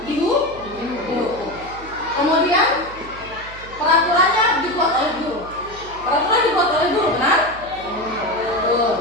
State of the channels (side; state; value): right; noise; hum, 18 dB below the sound